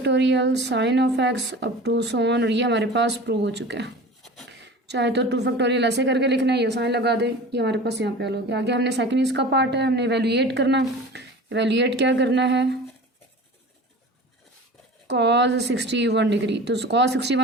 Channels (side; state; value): both; normal; correlation 0.37